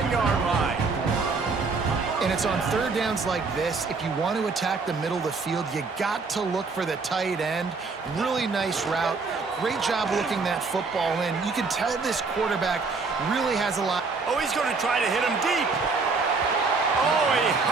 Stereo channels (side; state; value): left; quieter; 4.3 dB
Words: line. In a it's on third downs like this, if you want to attack the middle of the field, you got to look for the tight end. Really nice route. Great job looking that football in. You can tell this quarterback really has a lot. Oh, he's going to try to hit him deep. Oh, he